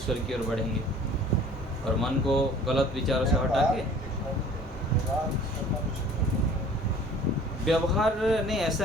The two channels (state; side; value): normal; both; correlation 0.49